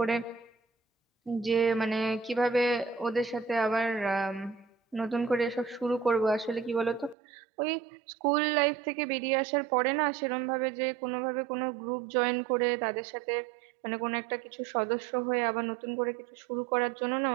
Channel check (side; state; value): left; drops out; at 7.2 s